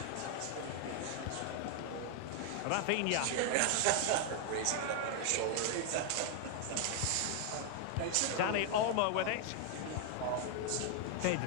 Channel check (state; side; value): different; both; correlation 0.00